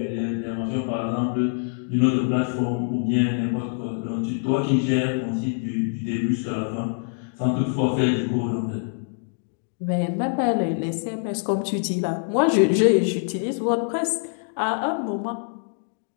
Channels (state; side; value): silent; right; digital silence